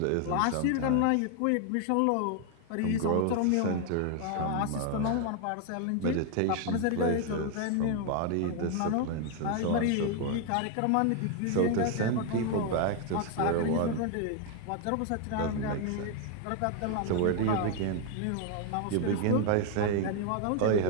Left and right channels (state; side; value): different; both; correlation 0.01